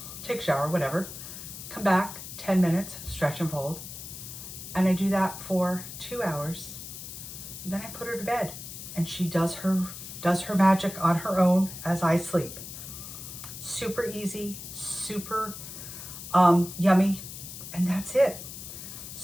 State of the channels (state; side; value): noise; left; hiss, 11 dB below the sound